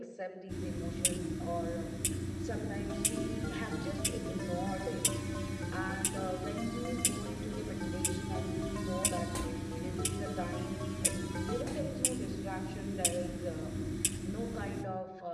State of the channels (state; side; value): identical; both; correlation 1.00